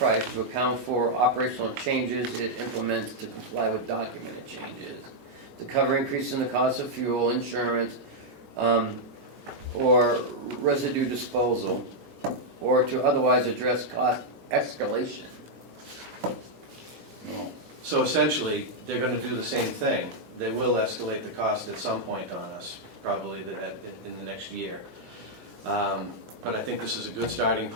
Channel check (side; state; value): left; late; 3.9 ms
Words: to account for operational changes it implements to comply with documented changes, to cover increases in the cost of fuel, insurance, or residue disposal, or to otherwise address cost escalation. So essentially, they're gonna do the same thing. They will escalate the cost at some point on us, probably in the next year. But I think this is a good starting